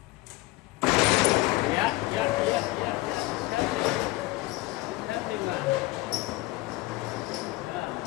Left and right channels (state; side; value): quieter; right; 19.8 dB